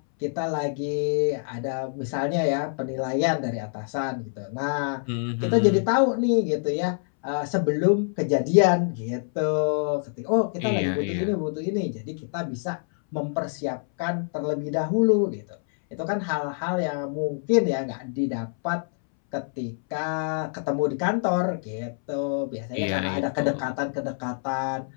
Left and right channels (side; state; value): right; silent; 61 dB below the other